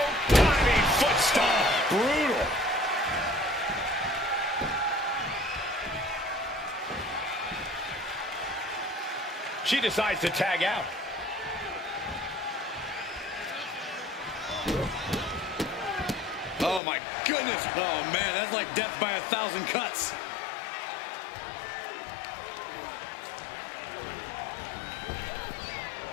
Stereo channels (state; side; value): drops out; right; at 16.8 s